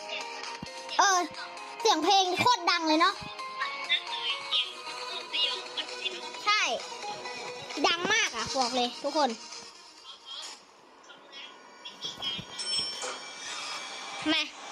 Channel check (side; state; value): both; identical; correlation 1.00